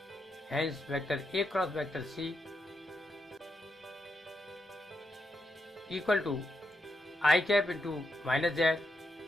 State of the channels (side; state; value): both; normal; correlation 0.83